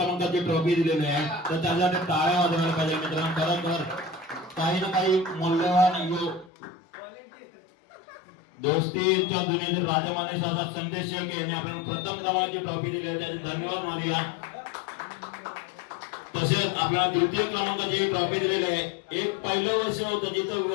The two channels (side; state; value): right; drops out; at 6.5 s